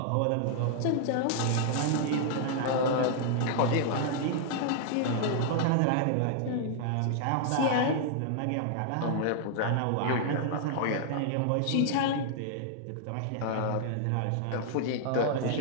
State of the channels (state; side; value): different; both; correlation -0.01